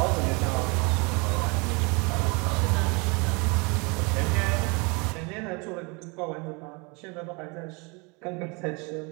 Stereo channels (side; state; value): left; quieter; 29.8 dB